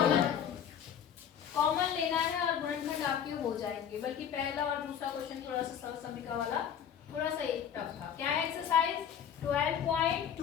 कॉमन लेना है और गुणनखंड आपके हो जाएंगे। बल्कि पहला और दूसरा क्वेश्चन थोड़ा सा सरल समीकरण वाला थोड़ा सा एक टफ था। क्या है एक्सरसाइज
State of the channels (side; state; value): right; quieter; 8.7 dB